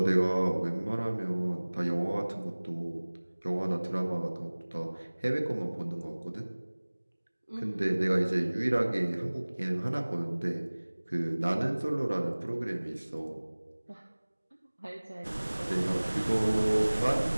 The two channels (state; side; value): inverted; both; correlation -1.00